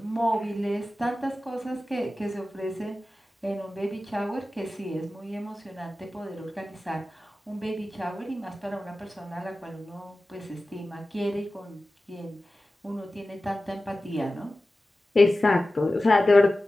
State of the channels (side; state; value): both; normal; correlation 0.95